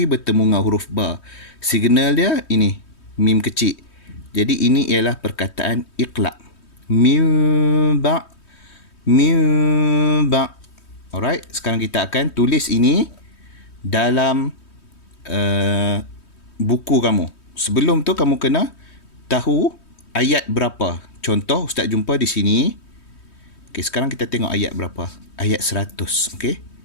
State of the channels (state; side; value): late; right; 3.2 ms